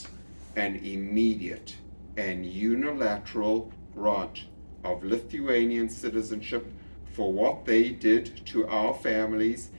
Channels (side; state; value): both; inverted; correlation -1.00